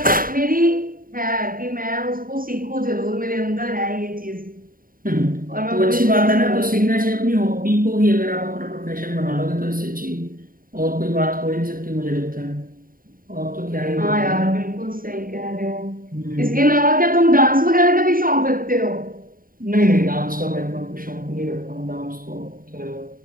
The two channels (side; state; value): left; late; 0.41 ms